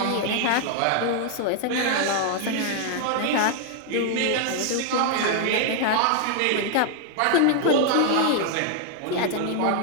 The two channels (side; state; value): both; different; correlation 0.00